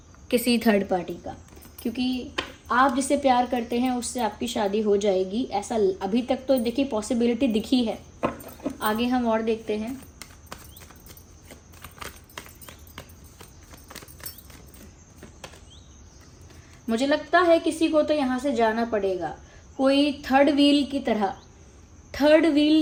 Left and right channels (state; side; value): identical; both; correlation 1.00